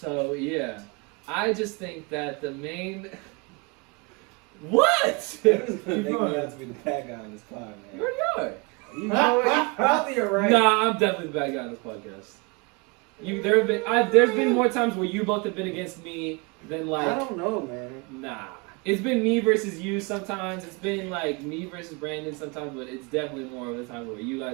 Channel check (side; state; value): left; quieter; 29.8 dB